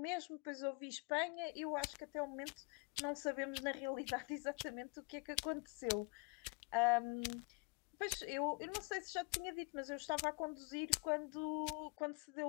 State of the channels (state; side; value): quieter; right; 30.6 dB